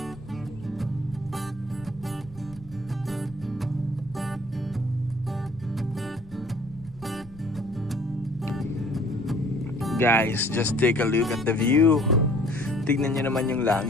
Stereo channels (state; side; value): noise; left; rumble, 20 dB below the sound